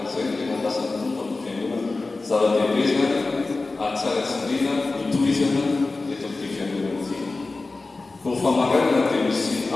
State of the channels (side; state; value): right; quieter; 3.5 dB